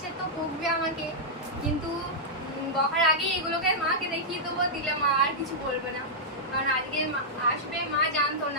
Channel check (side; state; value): both; normal; correlation -0.09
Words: তো বকবে আমাকে, কিন্তু বকার আগে এগুলোকে মাকে দেখিয়ে দেবো, দিলে মা আর কিছু বলবে না। কারণ আজকে আসবে, মা জানতো